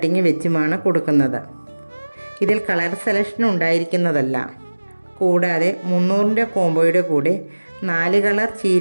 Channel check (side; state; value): both; inverted; correlation -1.00